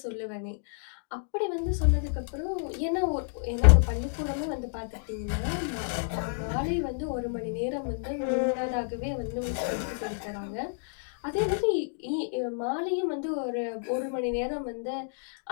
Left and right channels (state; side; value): silent; right; digital silence